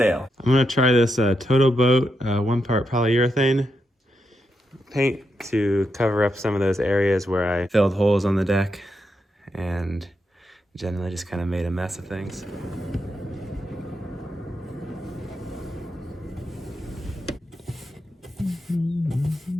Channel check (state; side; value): normal; both; correlation 0.84